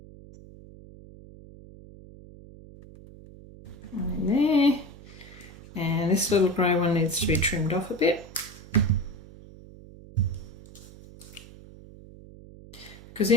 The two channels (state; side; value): noise; right; hum, 19 dB below the sound